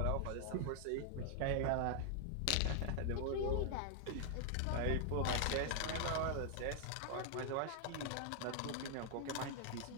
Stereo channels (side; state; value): both; different; correlation 0.00